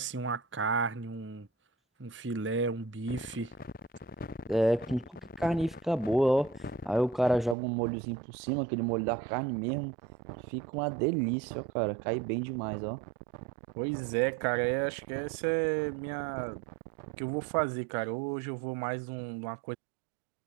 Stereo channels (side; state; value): left; drops out; at 7.6 s